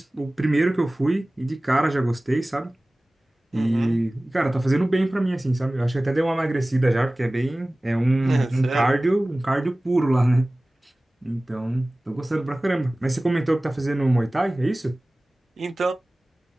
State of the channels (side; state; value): both; normal; correlation 0.98